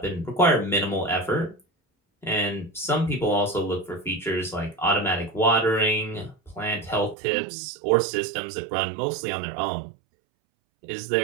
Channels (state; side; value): drops out; left; at 7.2 s